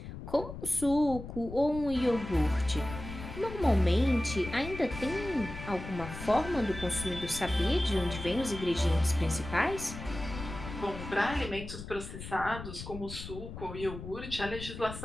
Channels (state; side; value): noise; left; rumble, 10 dB below the sound